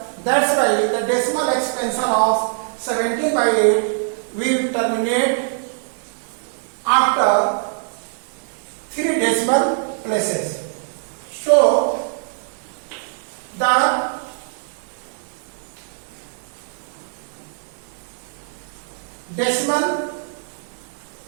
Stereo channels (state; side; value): silent; left; 58 dB below the other